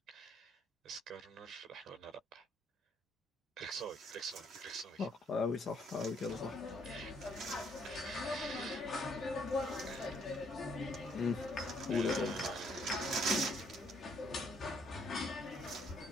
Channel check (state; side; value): normal; both; correlation 0.68